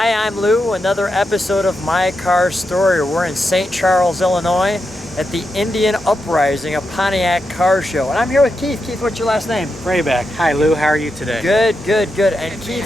I'm Lou. Another episode of My Car Story. We're in St. Charles, Illinois at the Indian Uprising, a Pontiac car show. And I'm here with Keith. Keith, what's your last name? Vrabec. Hi Lou, how are you today? Good, good, good. And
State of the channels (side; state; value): both; normal; correlation 0.86